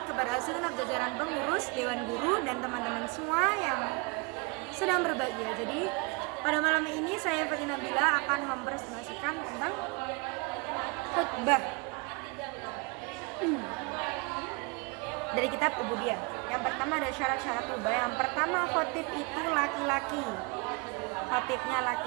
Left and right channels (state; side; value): quieter; left; 30.0 dB